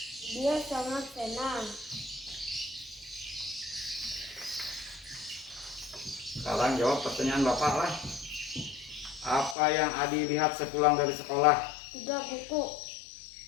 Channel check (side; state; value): right; drops out; at 9.6 s